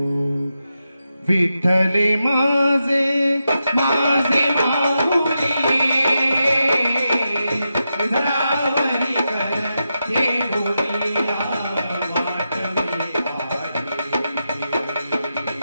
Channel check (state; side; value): inverted; both; correlation -0.88